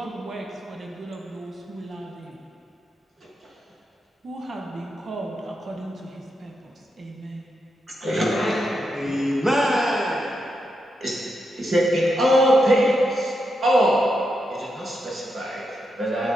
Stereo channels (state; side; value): normal; both; correlation 0.84